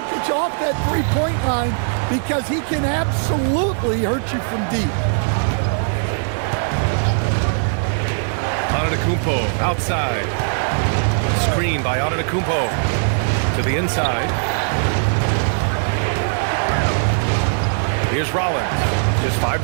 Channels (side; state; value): left; silent; 66 dB below the other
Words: off that three-point line because he can absolutely hurt you from deep. Antetokounmpo outside. Screen by Antetokounmpo to the inside. Here's Rollins. Just 5